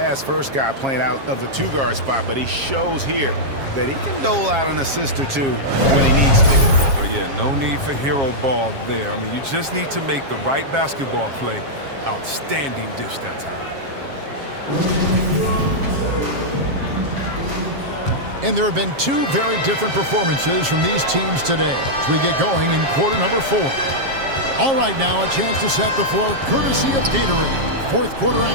guy playing out of the two-guard spot, but he shows here that he can dole out an assist or two when he needs to. Oh, yeah, no need for hero ball there. I mean, you just need to make the right basketball play. Outstanding dish that time. And there have been two very different performances from these teams today as we get going in quarter number 4. All right, now a chance to set the floor courtesy of Gatorade. Fourth quarter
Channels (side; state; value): left; late; 7.4 ms